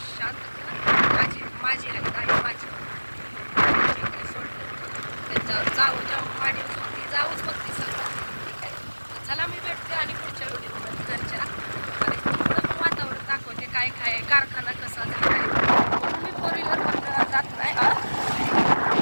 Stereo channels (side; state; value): both; inverted; correlation -1.00